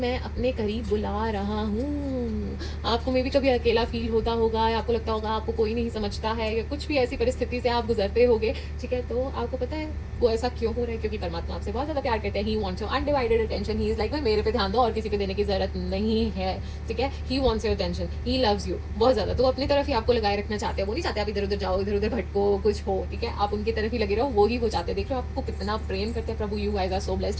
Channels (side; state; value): both; identical; correlation 1.00